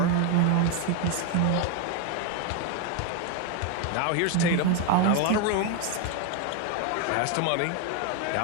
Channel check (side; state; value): both; different; correlation 0.01